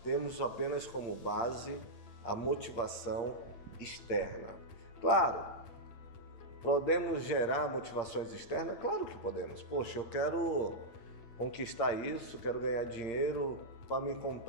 temos apenas como base a motivação externa. Claro, podemos gerar motivações externas? Claro que podemos. Poxa, eu quero conquistar isso, quero ganhar dinheiro para me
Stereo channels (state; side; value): late; right; 8.7 ms